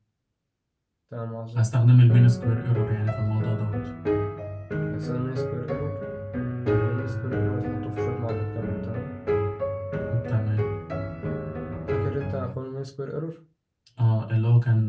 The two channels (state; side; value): identical; both; correlation 1.00